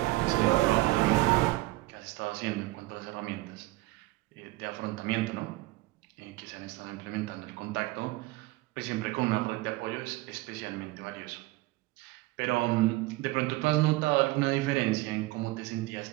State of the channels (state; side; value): quieter; left; 20.1 dB